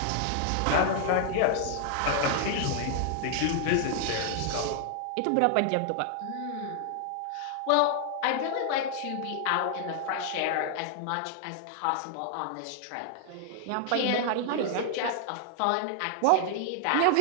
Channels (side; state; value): both; different; correlation 0.00